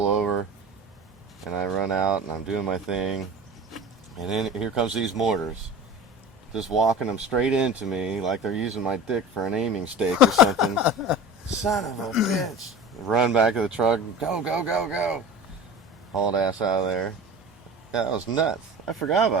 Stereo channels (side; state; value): both; normal; correlation 0.35